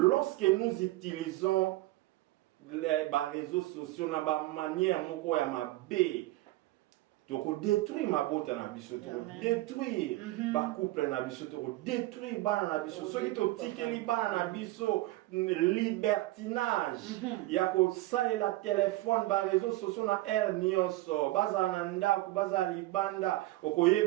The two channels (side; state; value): left; quieter; 18.0 dB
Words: nous utilisons les réseaux sociaux na ba manière moko ya mabe donc détruire ma beauté na biso to détruire ba couple na biso to détruire bana na biso so ki to tikeli bana na biso libertinage ya ko salela téléphone ba réseaux sociaux na nyonso baza na ndako baza libanda